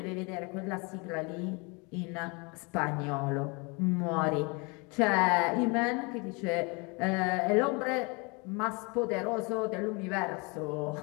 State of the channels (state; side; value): quieter; right; 30.1 dB